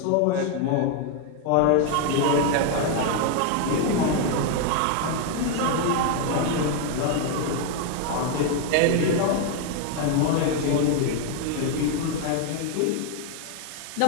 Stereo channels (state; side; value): different; both; correlation 0.01